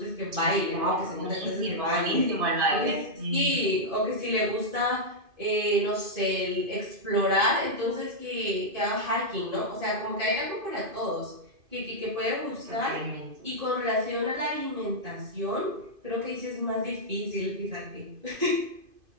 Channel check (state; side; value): late; left; 2.5 ms